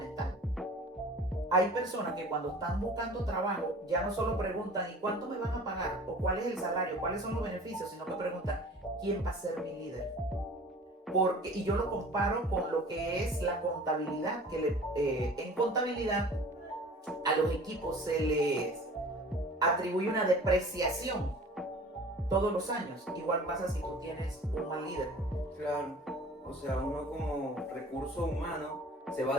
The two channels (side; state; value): both; normal; correlation 0.44